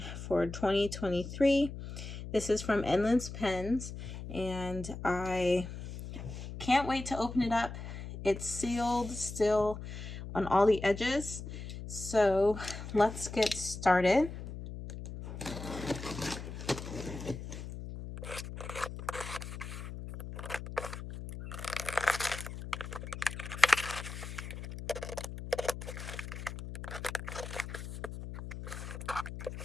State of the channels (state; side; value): noise; left; hum, 9 dB below the sound